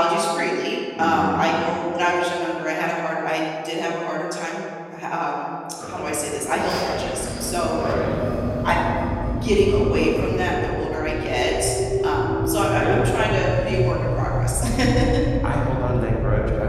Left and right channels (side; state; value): both; identical; correlation 1.00